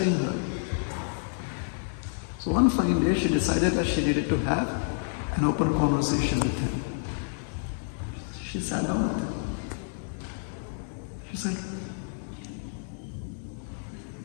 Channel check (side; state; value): right; silent; digital silence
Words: her. So one fine day, she decided that she needed to have an open conversation with him. She sat down with him. She said,